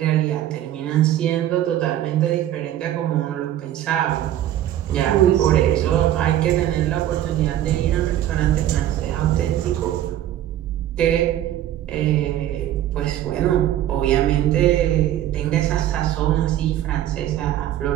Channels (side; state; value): left; quieter; 12.4 dB